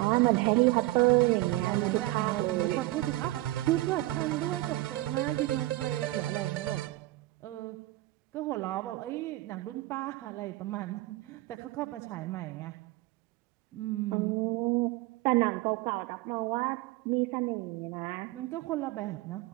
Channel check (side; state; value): left; quieter; 18.5 dB